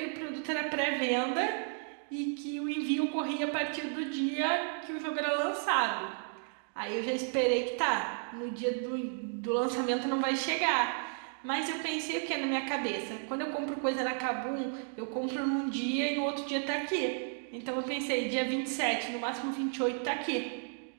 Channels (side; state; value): left; silent; 56 dB below the other